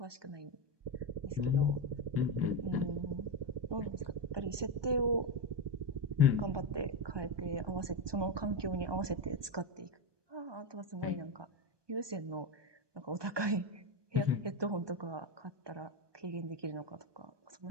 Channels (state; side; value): late; left; 1.2 ms